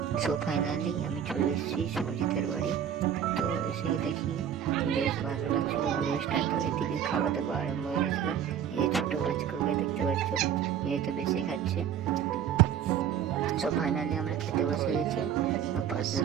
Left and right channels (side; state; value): left; quieter; 9.0 dB